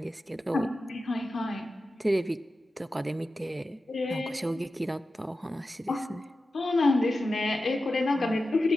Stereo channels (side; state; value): both; normal; correlation 0.93